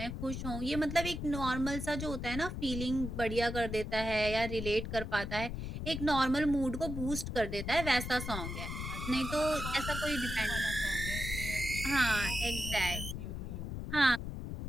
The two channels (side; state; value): left; noise; rumble, 5 dB below the sound